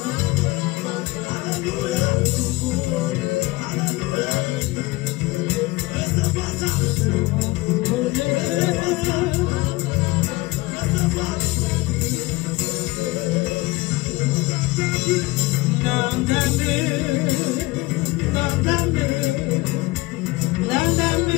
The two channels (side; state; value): right; quieter; 20.9 dB